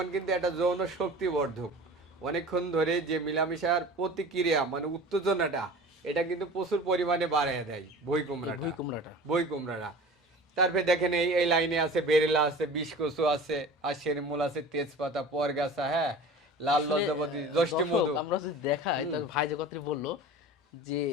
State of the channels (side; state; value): both; normal; correlation 0.39